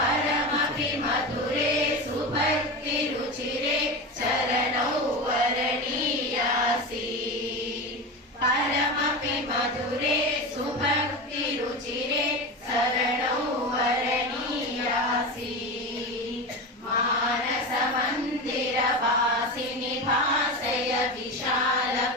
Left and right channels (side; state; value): both; normal; correlation 0.23